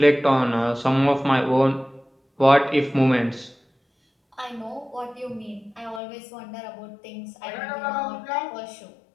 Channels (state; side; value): drops out; right; at 6.0 s